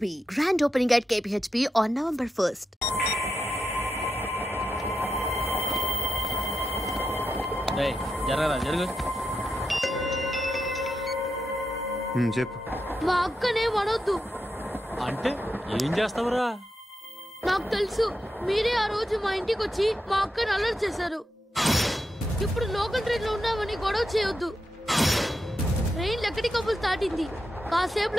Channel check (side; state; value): both; normal; correlation 0.87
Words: grand opening at KPHP on November 1st. Hey, జరుగు. చెప్పు. మా అక్కనే వడొద్దు. అంటే ఏం చేస్తావురా? నాకు తెలుసు, మీరే ఆ రోజు మా ఇంటికి వచ్చి మా అక్కని అల్లరి చేశారు. ఇప్పుడు లోకల్ ట్రైన్ లో ఉన్నామని గొడవ చేయొద్దు. ట్రైన్ లక్కడి కబుల్ దాటింది.